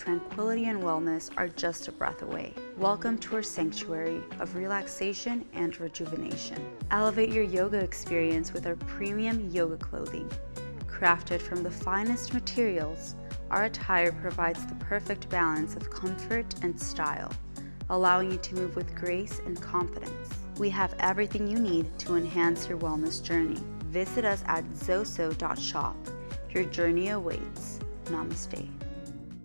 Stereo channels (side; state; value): both; inverted; correlation -1.00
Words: and wellness are just a breath away. Welcome to our sanctuary of relaxation and rejuvenation. Elevate your yoga experience with our premium yoga clothing. Crafted from the finest materials, our attire provides the perfect balance of comfort and style, allowing you to move with grace and confidence. We have everything you need to enhance your wellness journey. Visit us at zoso.shop. Your journey awaits. Namaste.